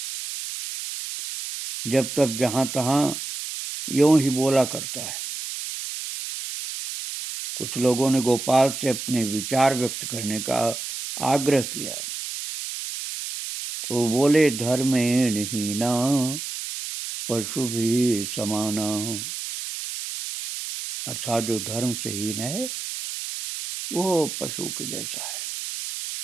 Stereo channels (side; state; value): right; noise; hiss, 6 dB below the sound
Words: जब तक जहां तहां यूं ही बोला करता है। कुछ लोगों ने गोपाल से अपने विचार व्यक्त करने का आग्रह किया, तो बोले, धर्मेण हीना पशु भी समाना। अर्थात जो धर्म से हीन है वो पशु के जैसा है।